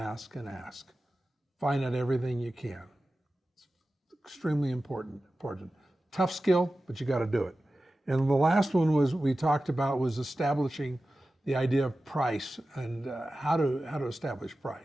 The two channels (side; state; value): both; normal; correlation 0.95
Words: and ask. Find out everything you can. It's extremely important. Tough skill, but you got to do it. And the last one we talked about was establishing the idea of price and how to establish